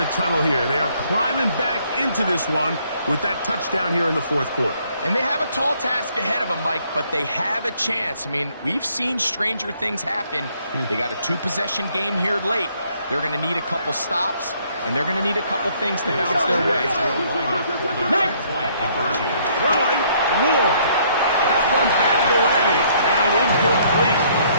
tunnel here. They are climbing back into this one with that touchdown here in the fourth quarter. And they have a tall task ahead of them, Mike, but they have a chance. I mean, we've seen stranger things happen. They got a 2-possession game here late. They're going to need a couple stops, and they're going to need a couple things to bounce their way. Throwing, Ward. That one batted away and incomplete.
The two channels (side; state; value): both; inverted; correlation -0.65